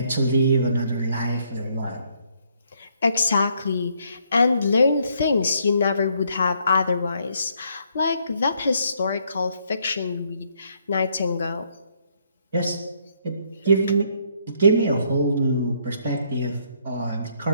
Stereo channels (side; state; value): both; inverted; correlation -0.70